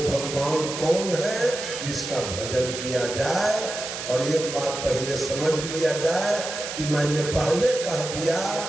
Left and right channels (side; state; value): right; noise; hiss, 7 dB below the sound